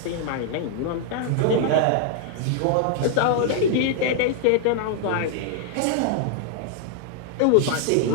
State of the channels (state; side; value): different; both; correlation 0.00